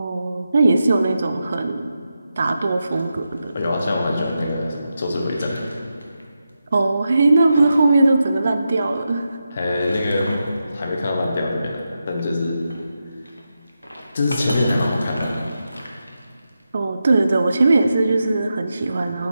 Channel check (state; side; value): inverted; both; correlation -0.88